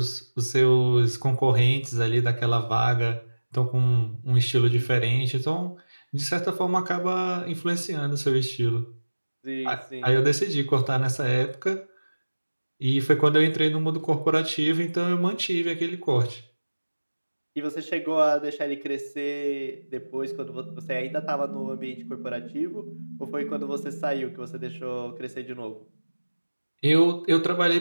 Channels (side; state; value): both; inverted; correlation -1.00